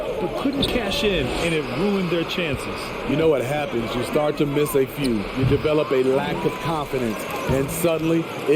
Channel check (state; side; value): identical; both; correlation 1.00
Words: but couldn't cash in, and it ruined their chances. You know what happens? You start to miss a few. You develop a lack of confidence, and suddenly